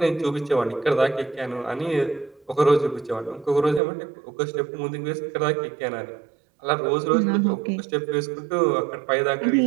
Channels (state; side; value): drops out; left; at 3.8 s